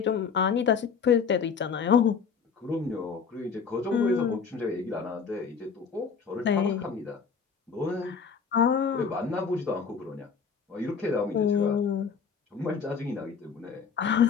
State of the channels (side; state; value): right; quieter; 6.0 dB